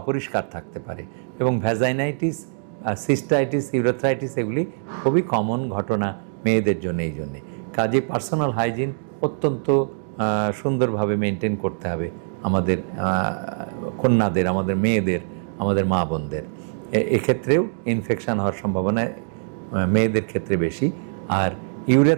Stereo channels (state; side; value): silent; left; digital silence